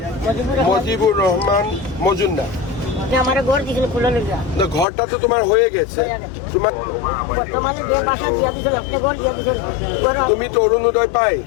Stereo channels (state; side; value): drops out; right; at 4.9 s